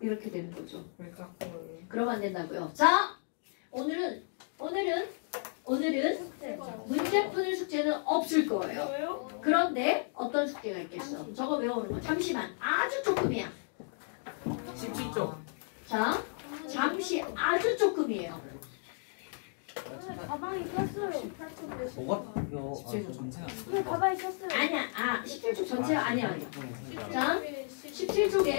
이렇게 되는 거죠. 그러면 안 된다고요. 자, 오늘은 문제 푸는 숙제는 없을 거예요. 왜요? 그런데 어떤 숙제가 있겠어? 저거 외우는 거. 잠시만. 아주 조금이야. 17쪽. 자, 잠시 아주 조금이에요. 가방에 꼈어요. 뭐가? 이거 17조 전체는 왜 가방에 꼈어요? 아니야. 17쪽 전체가 아니야. 자,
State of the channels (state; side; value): silent; right; 56 dB below the other